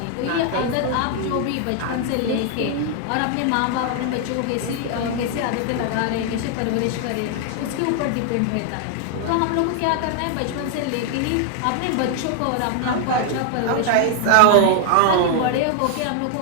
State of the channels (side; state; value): both; different; correlation 0.00